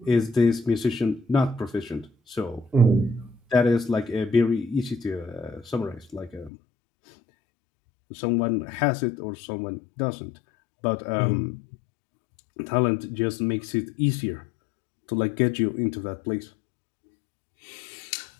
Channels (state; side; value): drops out; right; at 6.5 s